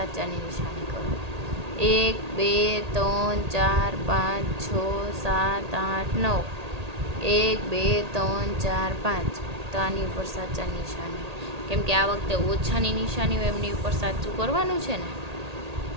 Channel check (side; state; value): left; late; 1.8 ms